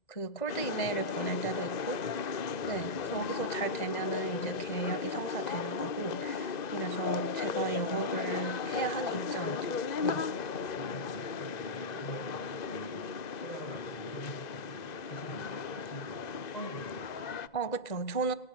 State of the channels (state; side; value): late; right; 2.0 ms